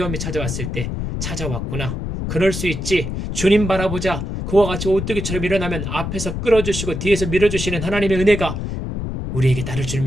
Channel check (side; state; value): left; noise; rumble, 4 dB below the sound